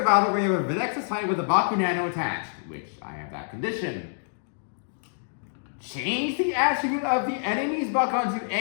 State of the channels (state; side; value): silent; right; digital silence